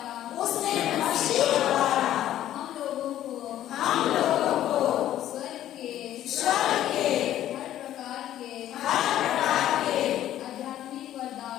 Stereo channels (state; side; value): quieter; right; 12.4 dB